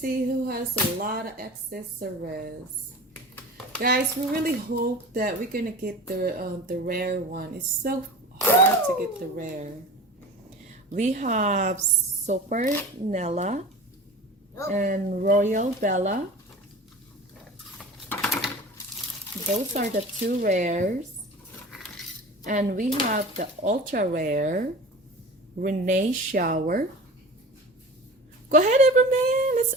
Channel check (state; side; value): normal; both; correlation 0.37